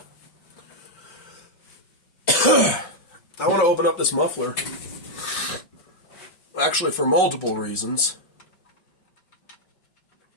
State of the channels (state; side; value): late; right; 5.5 ms